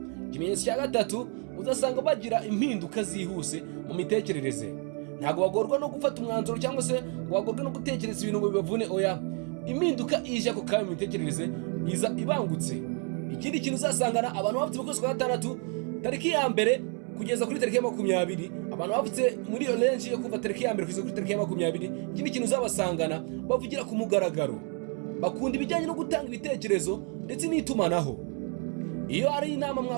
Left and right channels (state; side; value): quieter; left; 39.1 dB